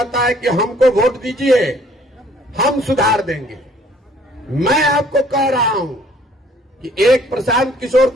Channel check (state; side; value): normal; both; correlation 0.59